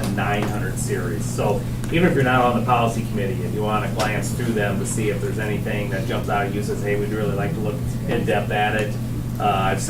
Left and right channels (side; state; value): both; identical; correlation 1.00